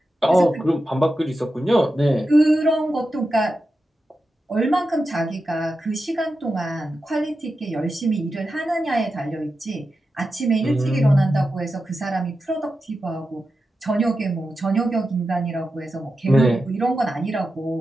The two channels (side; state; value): both; normal; correlation 0.90